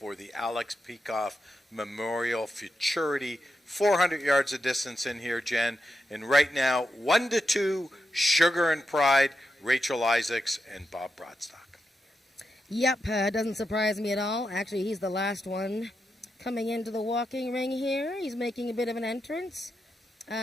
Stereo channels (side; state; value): both; normal; correlation 0.86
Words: the Alex Peikoff Memorial Futurity. 400 yards of distance in here, Jen. And right now, 1-2, Sugar and Pride, Rachel Isaacs, and Bob Broadstock. Yep, doesn't surprise me at all. Actually, he's the last one coming into the walking ring here. He's making a bit of an entrance.